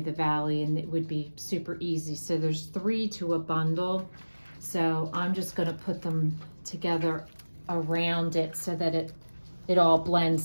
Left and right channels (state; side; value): inverted; both; correlation -1.00